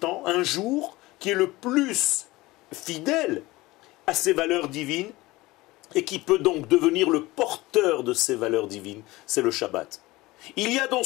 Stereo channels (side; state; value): right; quieter; 20.0 dB